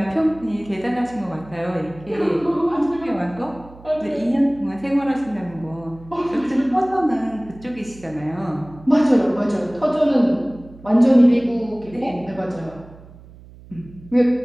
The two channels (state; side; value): noise; right; hum, 21 dB below the sound